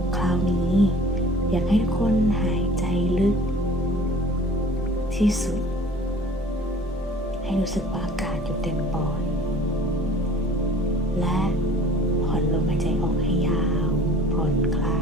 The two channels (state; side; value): normal; both; correlation 0.49